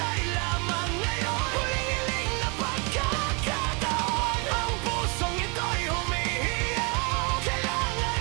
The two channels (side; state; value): left; quieter; 32.6 dB